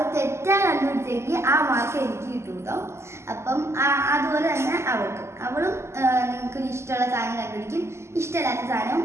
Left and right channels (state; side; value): late; left; 0.13 ms